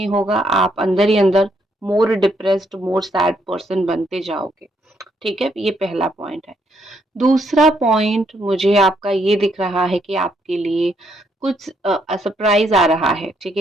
होगा, आप अंदर ही अंदर मोर डिप्रेस्ड, मोर सैड पर्सन बनते जाओगे, ठीक है। ये पहला पॉइंट है। दूसरा पॉइंट मुझे आपका ये दिख रहा है कि आपके लिए कुछ सरप्राइज आ रहा है, ठीक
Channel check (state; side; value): normal; both; correlation 0.73